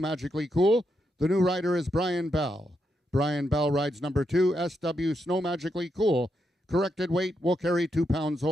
Cool. The new rider is Brian Bell. Brian Bell rides number 2, SW Snow Magically Cool. Corrected weight will carry 2 pounds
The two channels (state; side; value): normal; both; correlation 0.82